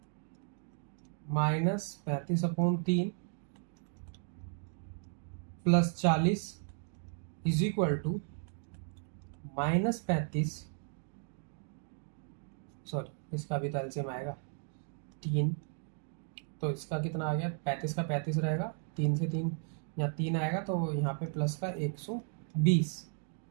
-35/3 + 40 = -35, सॉरी इसका भी तो एलसीएम आएगा 3। तो इसका कितना आ गया, 35 का 35 रहेगा, 3 से 3 यहाँ 3 आएगा, तो यहाँ पे प्लस का 120।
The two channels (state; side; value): silent; left; 54 dB below the other